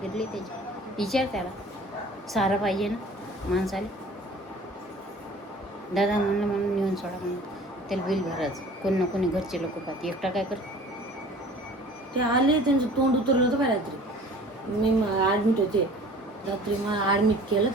फिरली त्याची. विचार त्याला, सारा पाहिजे ना माणसाला. दादा म्हणलं म्हणून नेऊन सोडा म्हणून. त्याला बिल भरायचं. कोण ना कोणी घरचे लोक पाहते. एकटा काय कर. ते आले, त्यांचं तोंड उतरलं होतं बाय रात्री. मी ॲडमिट होते रात्री. मला ॲडमिट केलं.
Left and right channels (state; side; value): normal; both; correlation 0.47